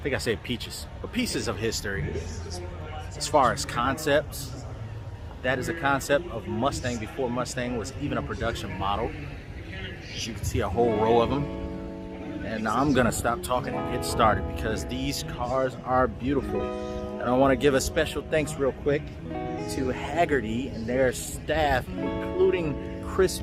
think I said peaches, but pieces of history. As far as concepts, that is a concept of Mustang before Mustang was even a production model. As you can see, a whole row of them. And I'm gonna stop talking and get started because these cars are beautiful. And I want to give a special thanks real quick to Haggerty and their staff, including Chris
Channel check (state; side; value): identical; both; correlation 1.00